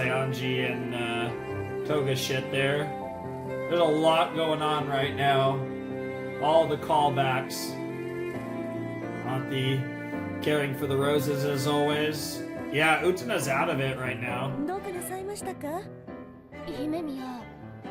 and Toga shit there. There's a lot going on right now. All the callbacks. Auntie caring for the roses as always. Yeah, Utena's out of it right now. どうかなさいましたか？姫宮、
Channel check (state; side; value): identical; both; correlation 1.00